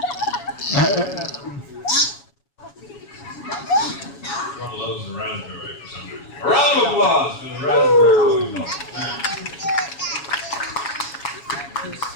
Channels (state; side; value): late; right; 7.2 ms